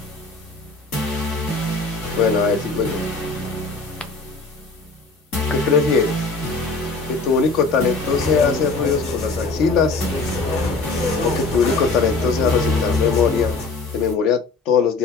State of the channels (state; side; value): quieter; right; 3.9 dB